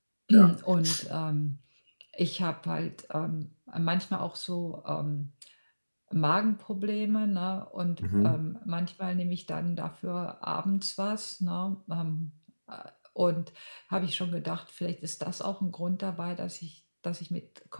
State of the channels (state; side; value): inverted; both; correlation -1.00